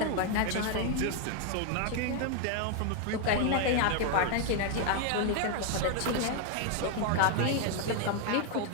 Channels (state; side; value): different; both; correlation 0.00